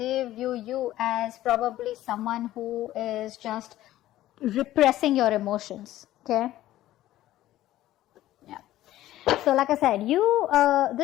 view you as probably someone who is just repressing your emotions. Okay. Yeah. So like I said,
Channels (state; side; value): quieter; right; 14.5 dB